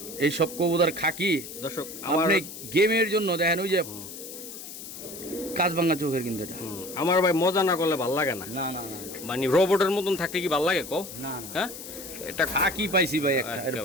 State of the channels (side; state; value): left; noise; hiss, 12 dB below the sound